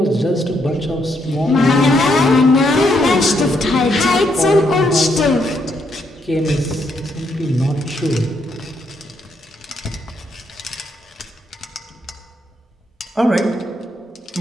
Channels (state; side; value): normal; both; correlation 0.76